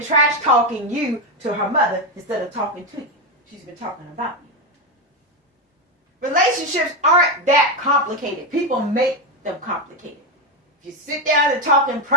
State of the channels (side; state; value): both; normal; correlation 0.10